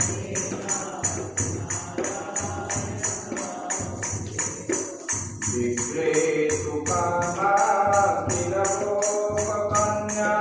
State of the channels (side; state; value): both; identical; correlation 1.00